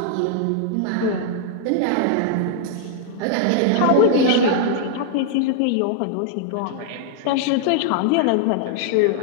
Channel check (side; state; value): both; different; correlation -0.01